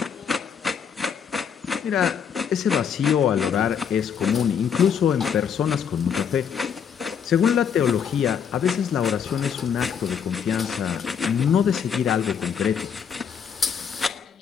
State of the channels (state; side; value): quieter; right; 7.4 dB